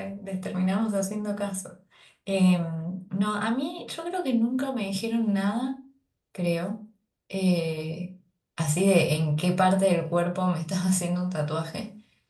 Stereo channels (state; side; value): identical; both; correlation 1.00